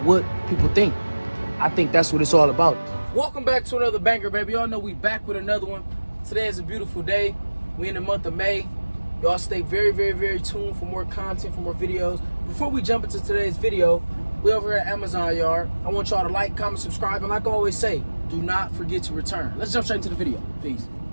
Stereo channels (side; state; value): both; inverted; correlation -1.00